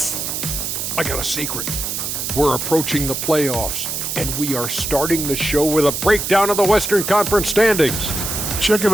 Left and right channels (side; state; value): right; noise; hiss, 3 dB below the sound